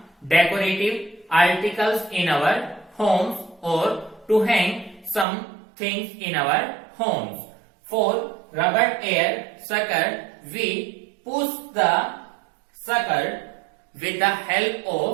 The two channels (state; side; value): drops out; left; at 5.2 s